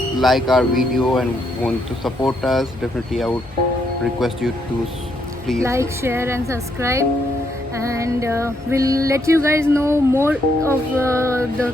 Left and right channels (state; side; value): normal; both; correlation 0.75